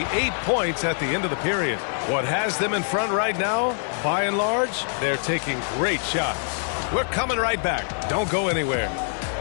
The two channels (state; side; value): silent; right; 60 dB below the other